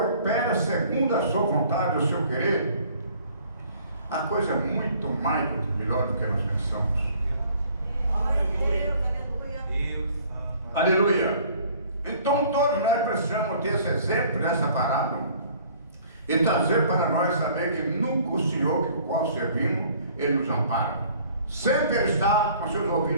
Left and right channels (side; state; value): both; inverted; correlation -0.54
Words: segundo a sua vontade, o seu querer, a coisa é muito mais melhor do que nós pensamos. Aleluia. Então todos nós precisamos ter esse exemplo dessa parábola e trazer para nós saber que nunca o Senhor que o qual servimos, Ele nos ampara. Sempre Ele está com seus